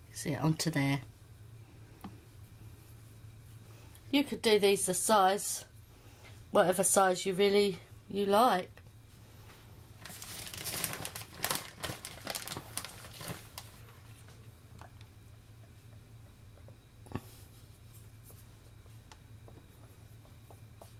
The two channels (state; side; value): identical; both; correlation 1.00